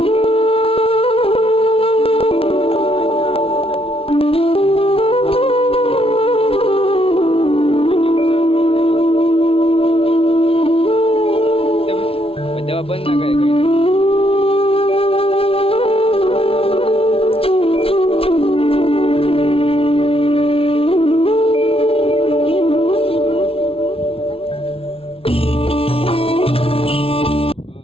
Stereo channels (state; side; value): late; right; 0.27 ms